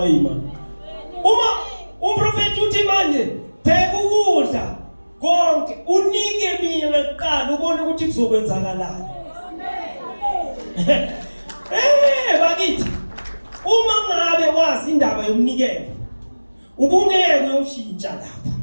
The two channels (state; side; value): inverted; both; correlation -1.00